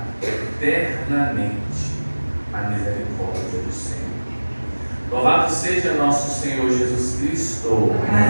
eternamente a misericórdia do Senhor. Louvado seja nosso Senhor Jesus Cristo.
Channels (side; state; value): both; inverted; correlation -1.00